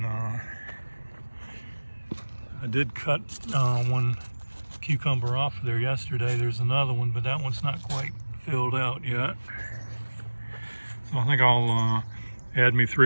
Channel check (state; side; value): inverted; both; correlation -1.00